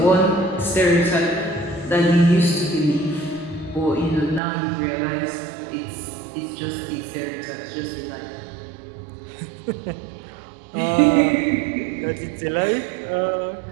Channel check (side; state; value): left; drops out; at 4.4 s